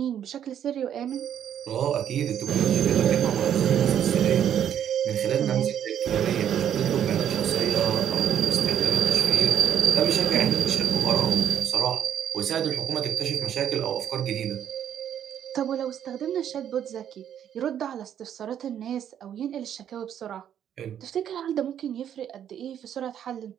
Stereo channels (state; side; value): quieter; left; 9.7 dB